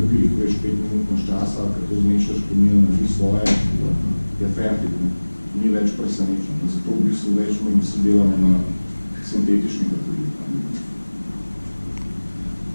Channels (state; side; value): inverted; both; correlation -1.00